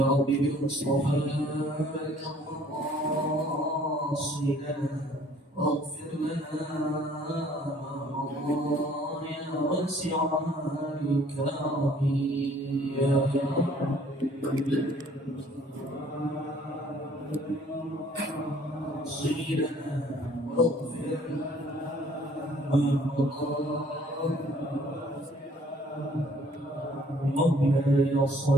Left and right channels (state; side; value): normal; both; correlation 0.58